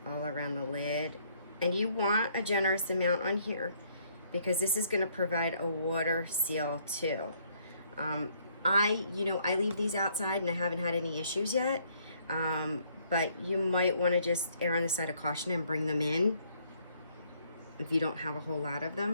All around the lid. And you want a generous amount on here, because this is going to provide a water seal too. I leave these outside and I haven't had any issues yet. But you might want to just err on the side of caution and bring them in if you don't have a whole lot of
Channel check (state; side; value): inverted; both; correlation -0.66